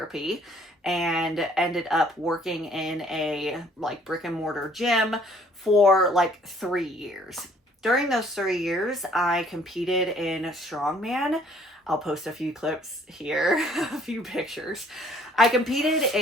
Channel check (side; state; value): both; normal; correlation 0.59